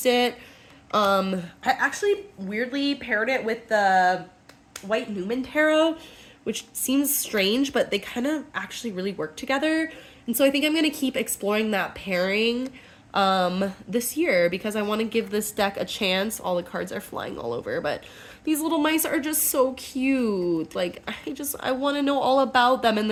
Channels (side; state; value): both; identical; correlation 1.00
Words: it. I actually weirdly paired it with the White Newman Tarot, which seems strange, but they kind of actually really work together. And so I think I'm going to keep exploring that pairing this year because I want to give this deck a chance. All the cards are flying all over, but these little mice are just so cute. Like, I want to know all about them and